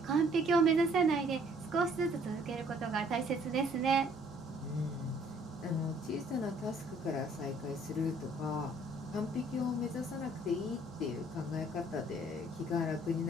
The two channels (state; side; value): normal; both; correlation 0.60